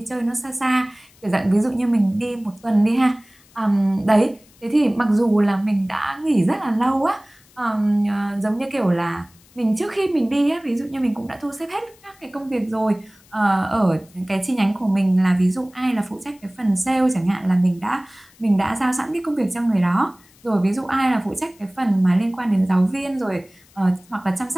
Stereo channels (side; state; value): left; noise; hiss, 29 dB below the sound